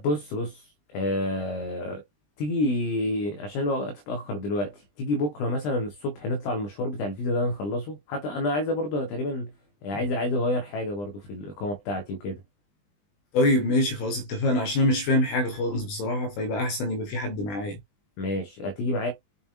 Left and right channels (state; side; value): late; right; 20 ms